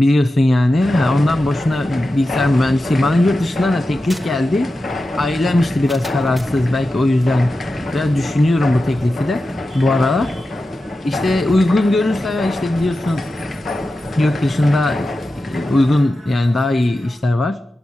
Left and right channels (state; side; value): normal; both; correlation 0.92